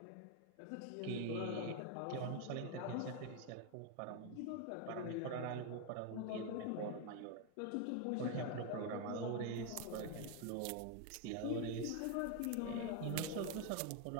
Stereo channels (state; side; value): different; both; correlation 0.01